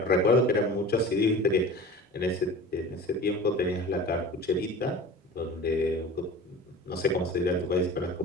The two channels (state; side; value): normal; both; correlation 0.37